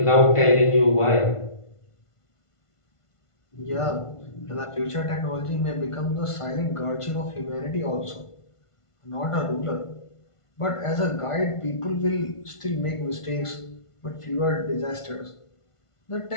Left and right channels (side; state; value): right; late; 1.5 ms